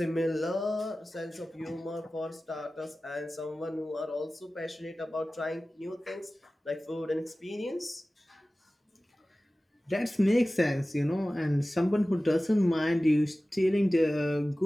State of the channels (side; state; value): both; normal; correlation 0.96